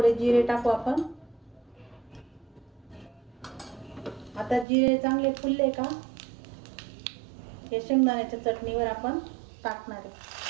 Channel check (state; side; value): drops out; left; at 4.7 s